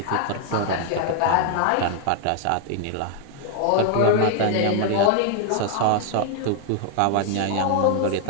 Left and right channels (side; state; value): both; different; correlation 0.00